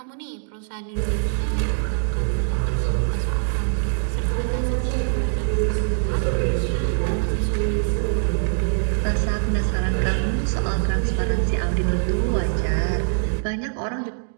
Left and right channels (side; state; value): left; silent; digital silence